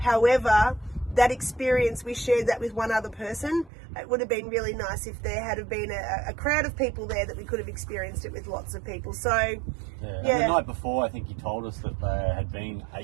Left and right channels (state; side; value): drops out; left; at 3.7 s